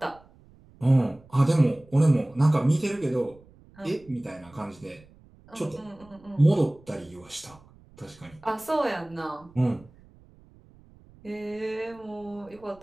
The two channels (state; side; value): noise; right; rumble, 26 dB below the sound